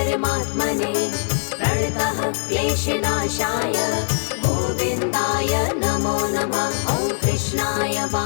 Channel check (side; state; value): right; silent; digital silence